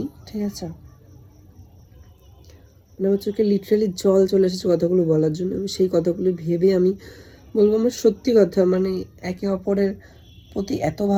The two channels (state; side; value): identical; both; correlation 1.00